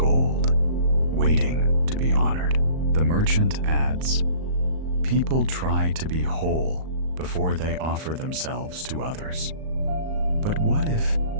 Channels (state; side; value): late; left; 38 ms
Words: waiting to be honored. The merchant adds, people try to be whole before they offer themselves to others. But what if